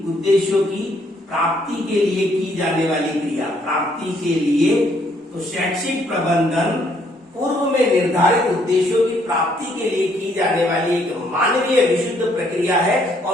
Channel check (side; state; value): both; normal; correlation 0.68